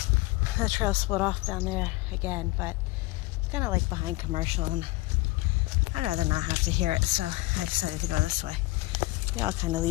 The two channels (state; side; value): quieter; right; 20.9 dB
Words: The trail split off down there again, but it's kind of like behind commercial, and I'd rather not have to hear it, so I decided to go this way. They all kind of